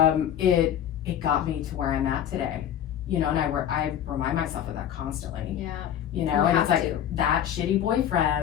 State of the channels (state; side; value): quieter; right; 10.2 dB